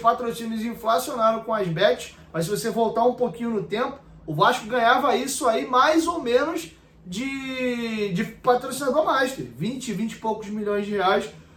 inflacionaram com as bets, mas se você voltar um pouquinho no tempo, o Vasco ganhava isso aí mais ou menos de patrocinador master, 20 e poucos milhões de reais.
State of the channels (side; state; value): both; identical; correlation 1.00